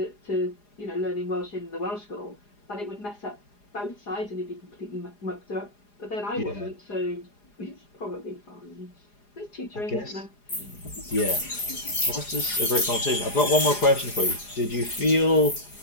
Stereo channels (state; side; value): late; right; 4.9 ms